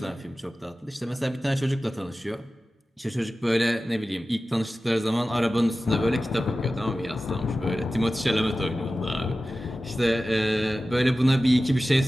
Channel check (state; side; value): normal; both; correlation 0.95